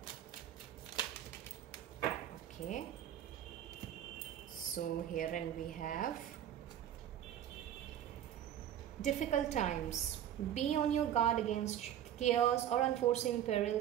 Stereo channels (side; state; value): left; quieter; 10.8 dB